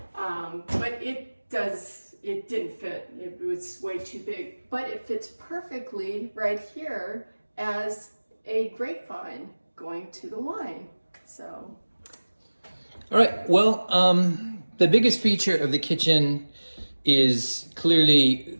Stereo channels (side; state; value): both; inverted; correlation -1.00